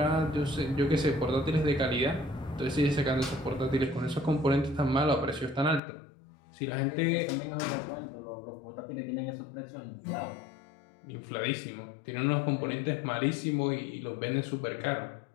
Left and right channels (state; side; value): drops out; right; at 5.8 s